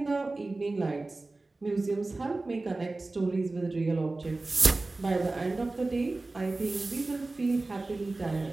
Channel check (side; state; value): left; quieter; 3.2 dB